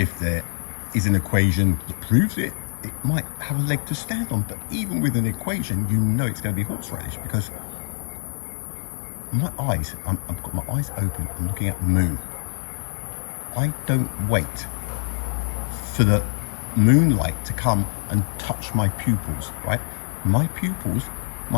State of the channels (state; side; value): silent; right; digital silence